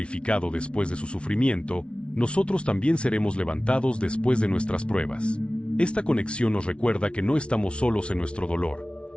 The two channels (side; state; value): right; late; 0.059 ms